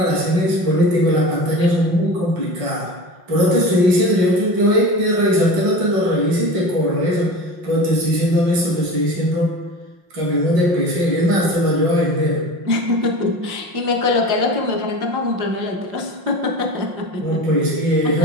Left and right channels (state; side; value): late; left; 5.6 ms